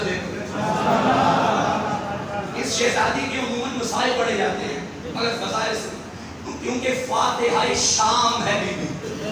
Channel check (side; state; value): both; identical; correlation 1.00